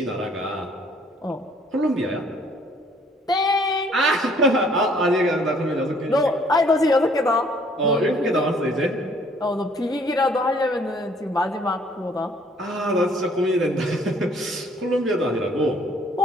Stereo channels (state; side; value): normal; both; correlation 0.60